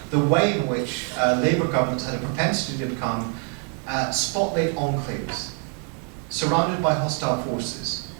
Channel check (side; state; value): left; quieter; 39.9 dB